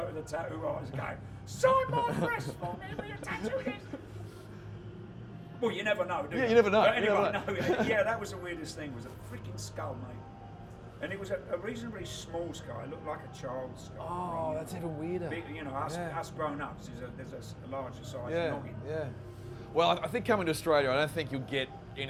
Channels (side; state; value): both; identical; correlation 1.00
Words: to the tattoo artist and go, "Sign my breast for me, will you tattoo this?" Well, you never know, do you? Yeah, you never know. But anyway, You never know. yeah, that was the weirdest thing. Was a freaking skull, mate. And it was a reasonably small skull. It looked like a child's skull. Oh, that's even weirder. Big, you know, us grown-ups, there's a larger size noggin. Yeah. Well, I think coming to Australia, I don't think you'll get